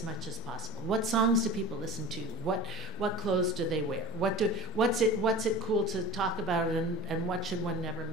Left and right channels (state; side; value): normal; both; correlation 0.33